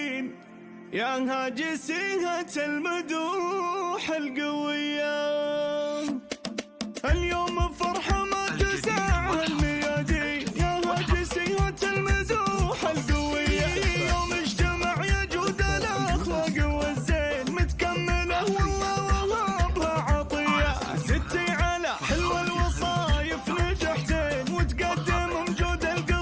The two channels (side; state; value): both; identical; correlation 1.00